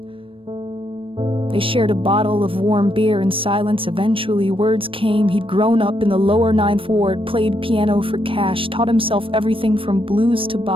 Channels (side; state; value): left; late; 0.26 ms